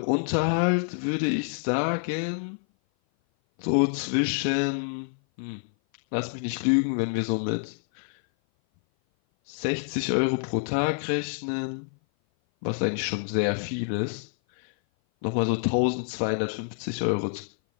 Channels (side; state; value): right; silent; 56 dB below the other